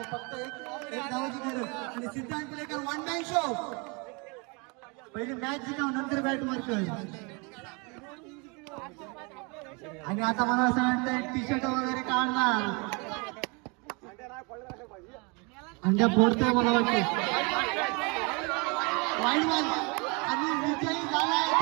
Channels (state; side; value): quieter; left; 30.9 dB